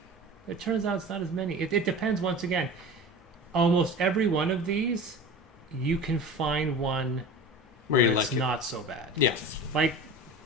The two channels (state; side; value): normal; both; correlation 0.34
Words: It turns out it's not as many. It depends, once again. Almost every one of these, you can find one where it's like not so bad. Yeah. Like,